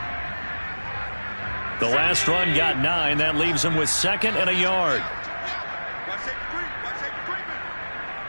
The last run got 9. That leaves him with 2nd and a yard. Watch safety creep. Watch safety creeping.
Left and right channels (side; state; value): both; inverted; correlation -1.00